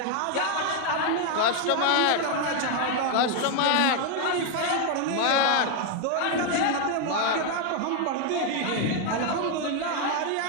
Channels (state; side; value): different; both; correlation 0.01